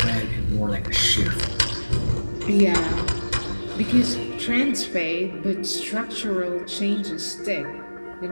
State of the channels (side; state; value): both; inverted; correlation -1.00